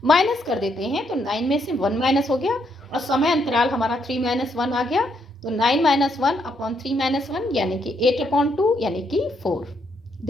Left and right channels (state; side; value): normal; both; correlation 0.75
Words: माइनस कर देते हैं। तो 9 में से 1 माइनस हो गया और समय अंतराल हमारा 3 - 1 आ गया। तो 9 - 1 अपॉन 3 - 1 यानी कि 8/2 यानी कि 4।